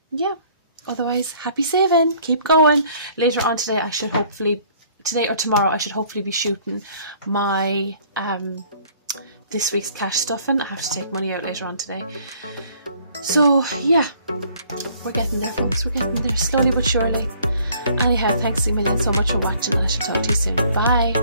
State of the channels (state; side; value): inverted; both; correlation -0.58